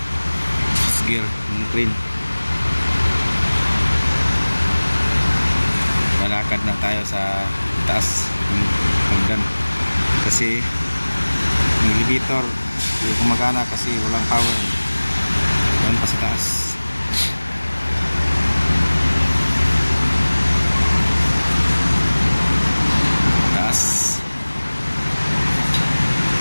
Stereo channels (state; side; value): inverted; both; correlation -1.00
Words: gear ng crane. Lalakad na tayo sa taas ng hagdan kasi yung elevator hindi gumagana kasi walang power. Doon pa sa taas.